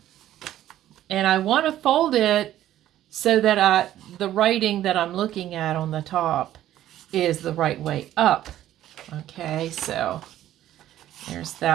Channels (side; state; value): left; quieter; 12.8 dB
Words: and I want to fold it so that the writing that I'm looking at on the top is the right way up. Okay, so there's